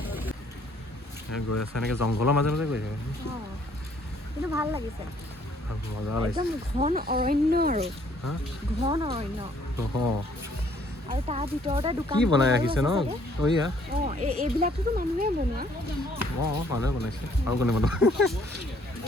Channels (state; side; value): normal; both; correlation 0.63